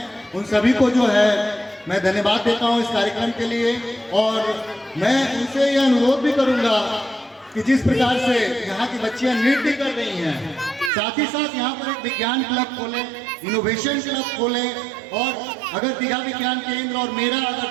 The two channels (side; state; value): left; drops out; at 10.9 s